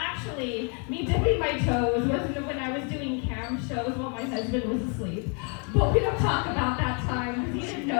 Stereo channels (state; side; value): quieter; right; 37.5 dB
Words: me dipping my toes was when I was doing cam shows while my husband was asleep. But we don't talk about that time because he didn't